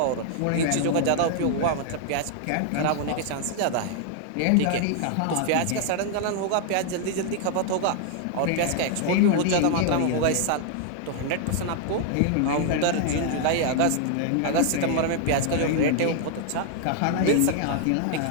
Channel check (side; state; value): both; different; correlation 0.00